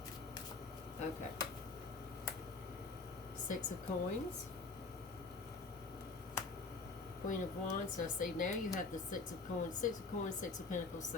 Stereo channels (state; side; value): quieter; right; 3.9 dB